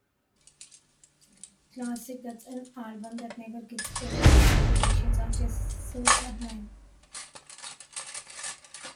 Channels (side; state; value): both; identical; correlation 1.00